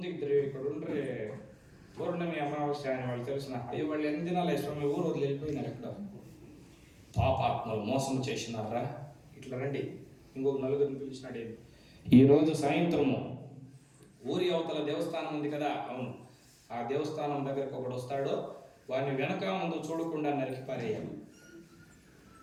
ఇద్దరు ఇక్కడ ఉండ్రే పౌర్ణమి అమావాస్య అని వాళ్ళు తెలిసిన, అయ్యో వాళ్ళు ఎన్ని దినాలు స్వామి ఊరు వదిలి వెళ్ళిపోయినారు, ఎక్కడ పాపాత్మలు మోసం చేసినారా, ఇట్లా రండి. ఇంకొక నలుగురిని పిలిచినాడు. ఈరోజు సాయంత్రము ఊరి అవతల దేవస్థానం ఉంది కదా, అవును, ఆ దేవస్థానం దగ్గరకు ఒకడు వస్తాడో వాడిని వెనక ముందు చూడకుండా నరికి పారేయాలి,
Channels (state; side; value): identical; both; correlation 1.00